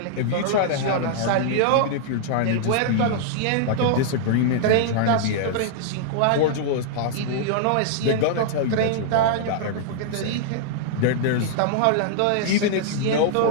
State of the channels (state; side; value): different; both; correlation -0.01